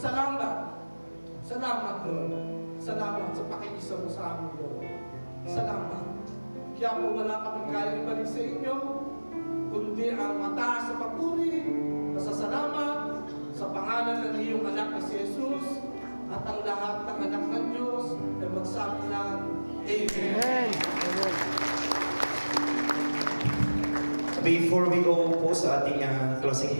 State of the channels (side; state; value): both; inverted; correlation -1.00